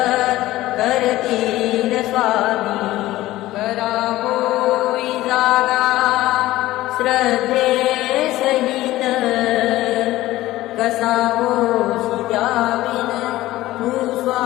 करतील स्वामी। करावोई जागा श्रद्धे सहित, कसा होशी द्याविन तू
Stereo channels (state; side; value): quieter; right; 16.4 dB